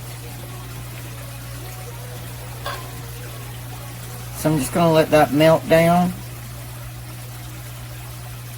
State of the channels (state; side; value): identical; both; correlation 1.00